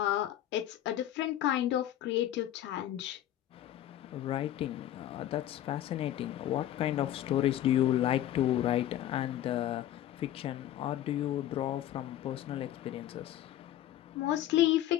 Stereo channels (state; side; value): quieter; right; 12.5 dB